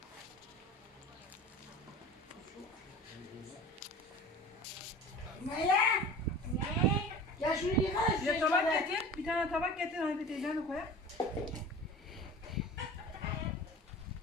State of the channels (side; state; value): both; normal; correlation 0.38